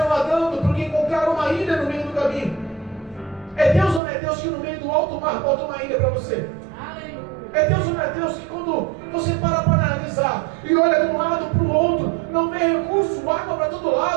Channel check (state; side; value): drops out; left; at 4.0 s